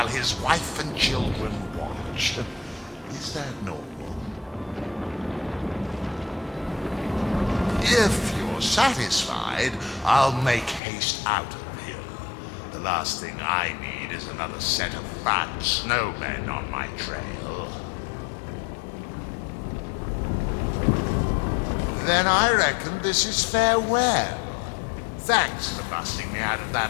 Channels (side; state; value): right; drops out; at 10.8 s